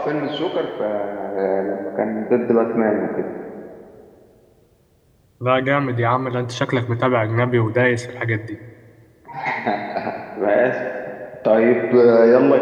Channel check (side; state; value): both; identical; correlation 1.00